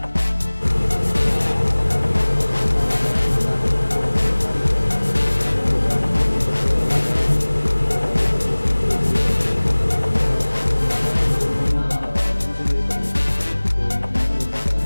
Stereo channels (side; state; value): both; inverted; correlation -1.00